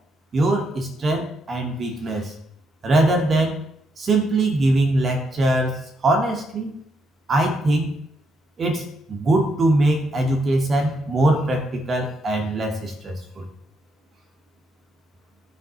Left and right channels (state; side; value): normal; both; correlation 0.78